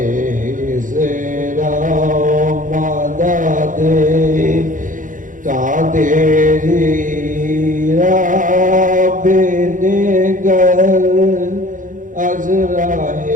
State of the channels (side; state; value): left; late; 0.38 ms